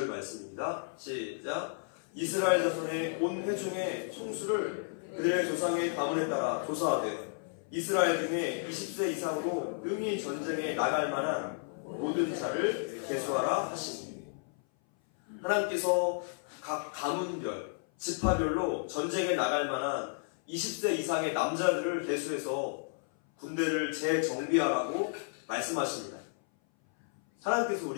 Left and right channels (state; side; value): silent; right; 56 dB below the other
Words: 말씀입니다. 시작. 이스라엘 자손의 온 회중의 총수를 그들의 조상의 가문에 따라 조사하되 이스라엘 중에 20세 이상으로 능히 전쟁에 나갈 만한 모든 자를 계수하라 하시니, 하나님께서 각 가문별, 지파별로 전쟁에 나갈 만한 20세 이상의 남자들을 계수해서 군대를 재정비하라고 말씀하십니다. 하나님께서